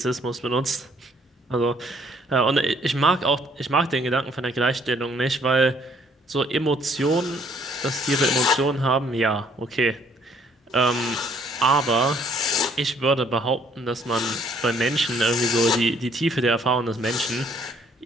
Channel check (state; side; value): normal; both; correlation 0.63